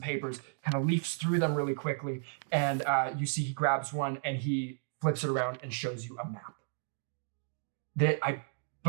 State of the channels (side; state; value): left; silent; digital silence